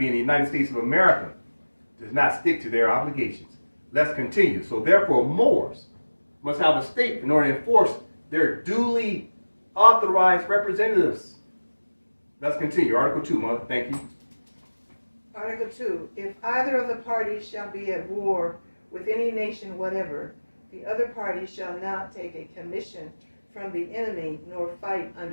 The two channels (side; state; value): both; inverted; correlation -1.00